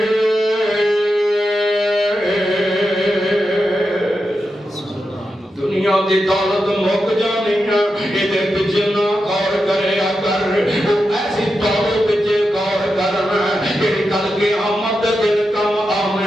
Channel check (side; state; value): both; normal; correlation 0.88